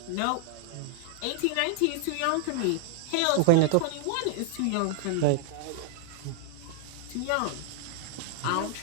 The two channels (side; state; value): both; different; correlation 0.00